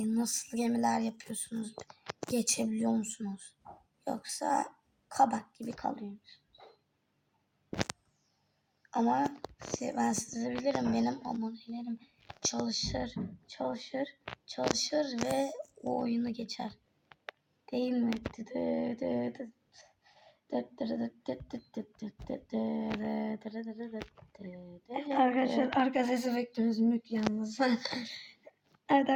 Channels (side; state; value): both; identical; correlation 1.00